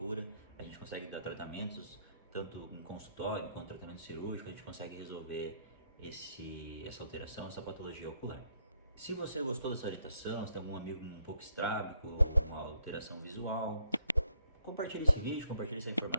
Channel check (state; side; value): inverted; both; correlation -0.71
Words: a gente consegue dar tratamentos, tanto em consultório quanto tratamento cirúrgico, a gente consegue resolver essa alteração, essa patologia ocular. Se você gostou dessa orientação, se tem algum amigo um pouco estrábico, uma alteração visual, compartilhe esse vídeo, compartilhe essa